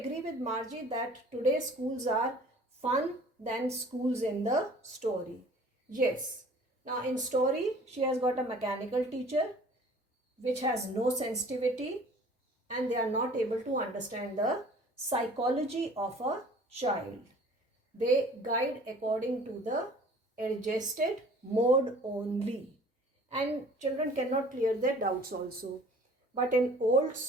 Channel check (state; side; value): normal; both; correlation 0.50